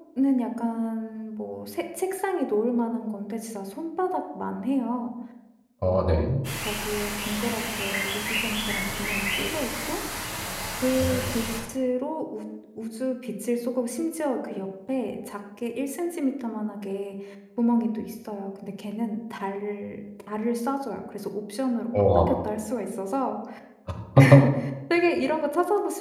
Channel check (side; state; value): both; identical; correlation 1.00